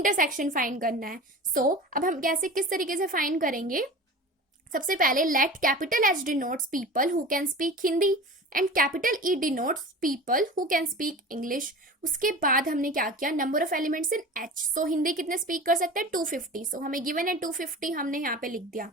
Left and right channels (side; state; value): both; normal; correlation 0.35